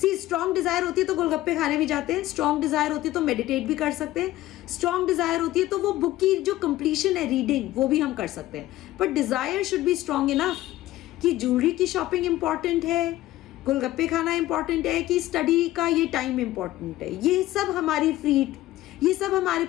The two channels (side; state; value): right; quieter; 15.7 dB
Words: See, strong desire होती है तो गोलगप्पे खाने भी जाते हैं, strong desire होती है तो meditate भी कर सकते हैं, strong desire होती है तो वो बुक की जो completion है रीडिंग वो भी हम कर सकते हैं. But desire should be strong enough कि ज्वेलरी की शॉपिंग इम्पॉर्टेंट है, गोलगप्पे खाना इम्पॉर्टेंट है, कि स्टडी का ये टाइम इम्पॉर्टेंट है. ये सब हमारी फ्री ये सब हमारे